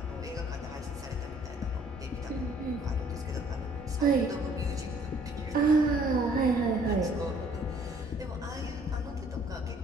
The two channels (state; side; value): normal; both; correlation 0.60